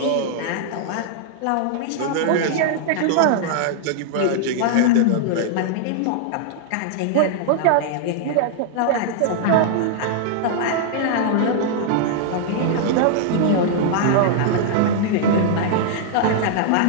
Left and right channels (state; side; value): different; both; correlation -0.01